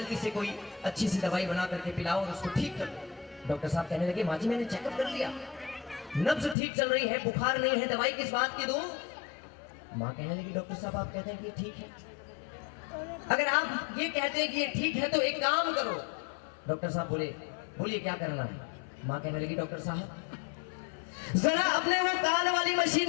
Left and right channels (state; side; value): drops out; right; at 6.6 s